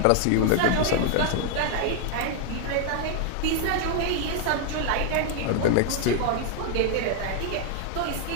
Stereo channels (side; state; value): both; different; correlation 0.00